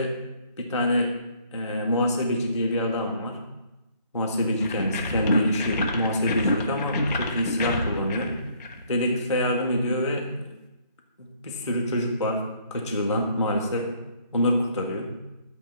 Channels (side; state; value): both; inverted; correlation -0.63